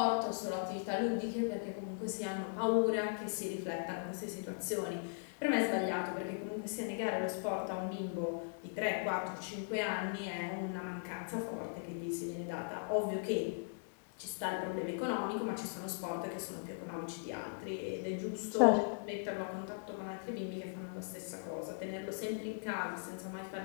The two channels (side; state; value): right; silent; digital silence